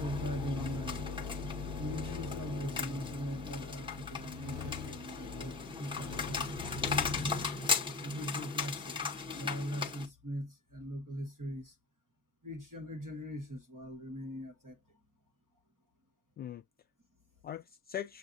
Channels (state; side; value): quieter; right; 3.3 dB